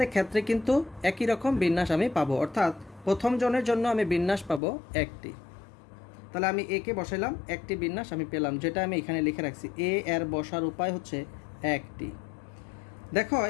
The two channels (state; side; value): drops out; right; at 4.6 s